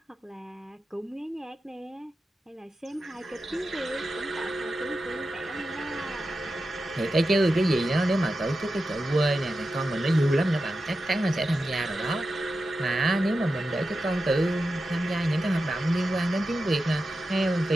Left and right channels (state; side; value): normal; both; correlation 0.91